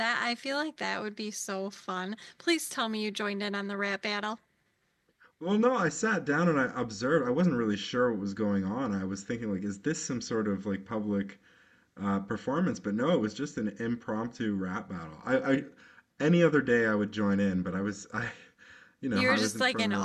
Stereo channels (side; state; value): both; identical; correlation 1.00